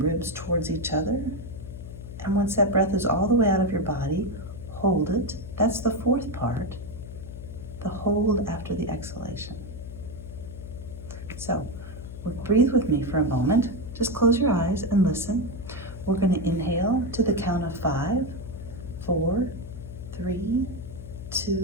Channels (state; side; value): noise; left; hum, 11 dB below the sound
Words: towards each other. And once that breath is all the way out of your body, hold it. That's the 4th part, the hold after the exhalation. So breathe with me for a moment. Just close your eyes and listen. We're going to inhale to the count of 5, 4, 3,